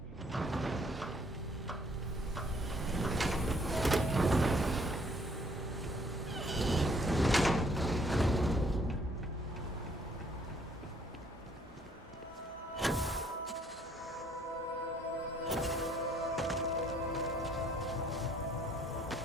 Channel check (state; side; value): normal; both; correlation 0.64